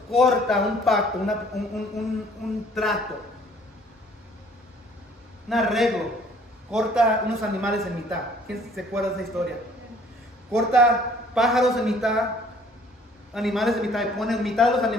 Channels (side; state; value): both; normal; correlation 0.57